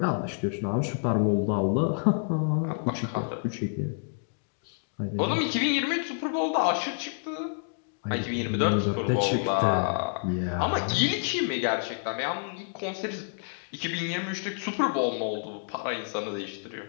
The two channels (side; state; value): right; silent; digital silence